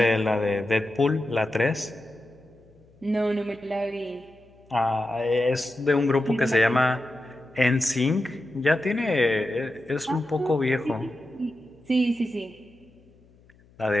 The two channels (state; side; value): noise; left; hum, 29 dB below the sound